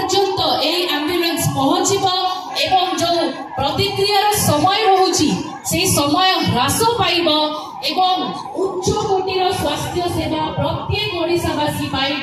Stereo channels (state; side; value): identical; both; correlation 1.00